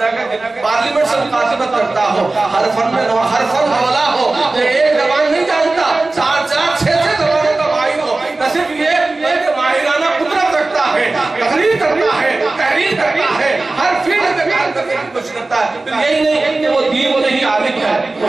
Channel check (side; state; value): left; quieter; 3.2 dB